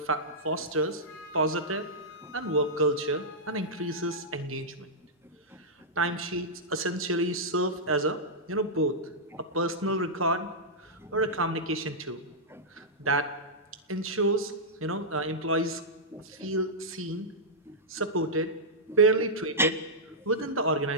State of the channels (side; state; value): both; normal; correlation -0.10